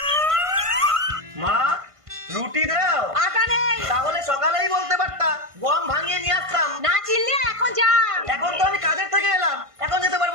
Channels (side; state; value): left; late; 1.5 ms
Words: মা, রুটি দাও। আটা নেই। তাহলে সকালেই বলতে পারতা, গম ভাঙিয়ে নিয়ে আসতাম। না চিনলে এখন যা। এখন তো আমি কাজের থেকে এলাম, এখন যেতে